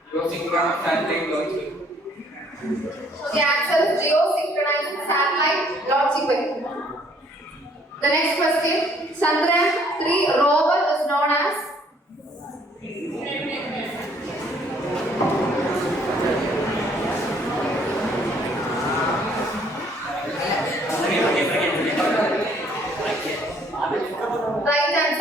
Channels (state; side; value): normal; both; correlation 0.62